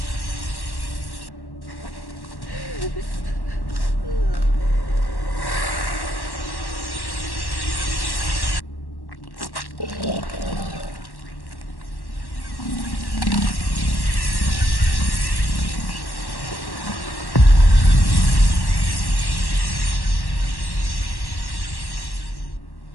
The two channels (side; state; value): right; late; 1.1 ms